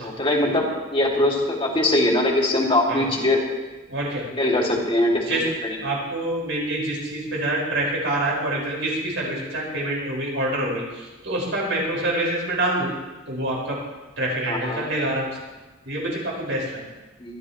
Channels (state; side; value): normal; both; correlation 0.31